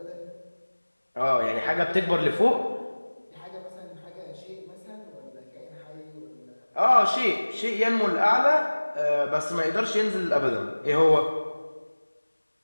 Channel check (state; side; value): inverted; both; correlation -1.00